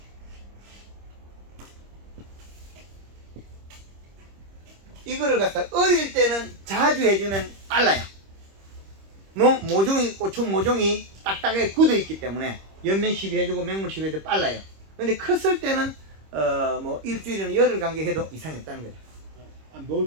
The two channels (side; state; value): left; late; 26 ms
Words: 이거를 갖다 어릴 때는 자주 해주면 빨라요. 고추 모종이 딱딱하게 굳어 있기 때문에 연면십이 해주고 맹물십이 해도 빨라요. 근데 컸을 때는 뭐 일주일이나 열흘 간격해도 이상이 없다는 거죠.